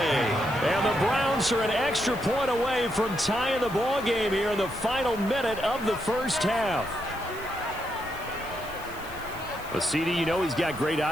the Browns are an extra point away from tying the ball game here in the final minute of the 1st half. Well, CD, you know he's got great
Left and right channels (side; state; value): left; noise; hiss, 19 dB below the sound